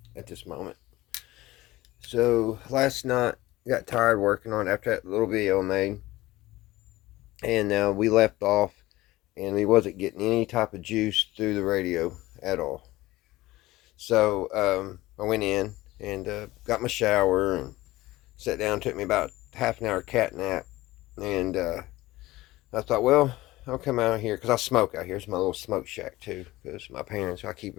at this moment. So last night got tired working on it after that little video I made, and we left off and we wasn't getting any type of juice through the radio at all. So I went in and got my shower and sat down. Took me about half an hour cat nap, and I thought, well, I'll come out here because I smoke out here. It's my little smoke shack too, because my parents, I keep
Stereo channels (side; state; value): right; quieter; 18.0 dB